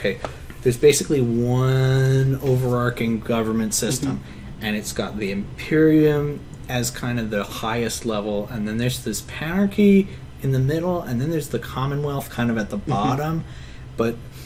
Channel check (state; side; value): identical; both; correlation 1.00